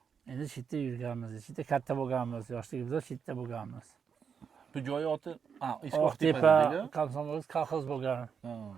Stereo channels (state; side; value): quieter; left; 6.7 dB